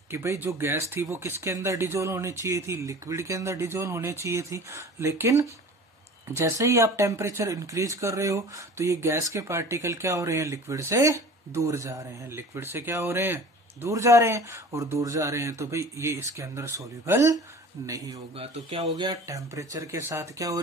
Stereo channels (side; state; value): both; normal; correlation 0.41